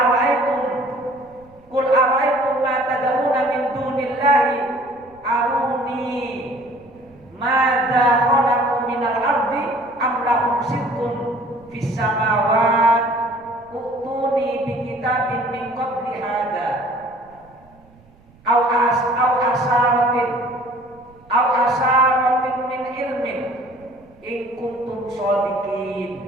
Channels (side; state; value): right; noise; rumble, 28 dB below the sound